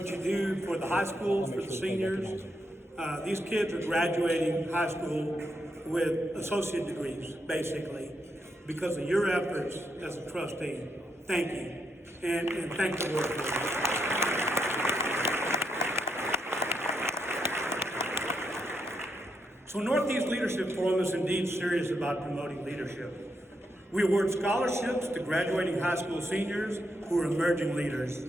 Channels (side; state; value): both; normal; correlation 0.80